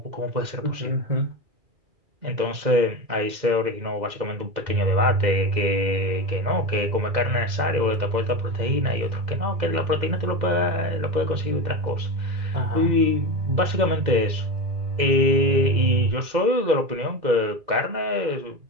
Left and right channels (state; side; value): late; left; 2.0 ms